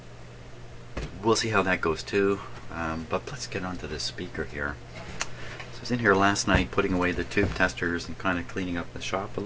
we'll see how that goes too. But let's get onto this speaker here. So I was in here last night putting away the tube testers and kind of cleaning up the shop a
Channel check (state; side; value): identical; both; correlation 1.00